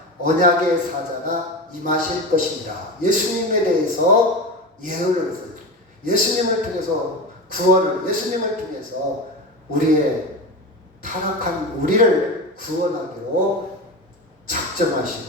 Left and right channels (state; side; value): normal; both; correlation 0.24